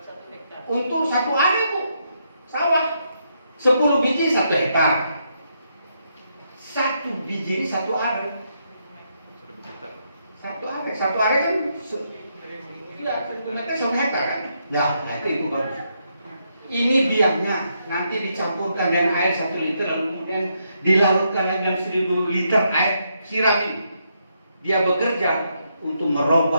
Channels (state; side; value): inverted; both; correlation -0.78